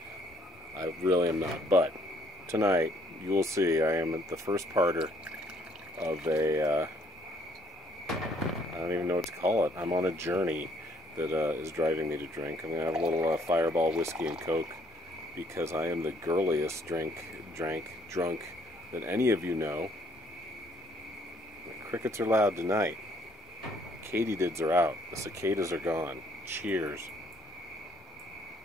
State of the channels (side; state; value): both; normal; correlation 0.64